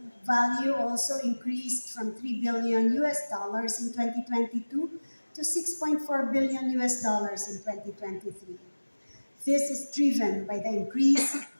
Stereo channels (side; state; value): both; inverted; correlation -1.00